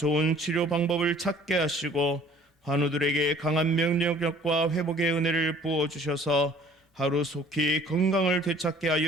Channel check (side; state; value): both; normal; correlation 0.53